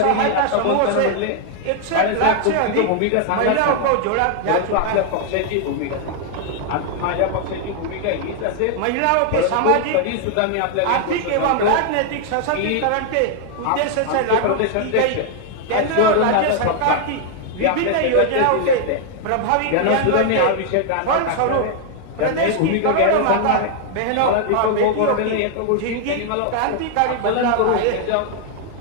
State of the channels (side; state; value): both; different; correlation 0.00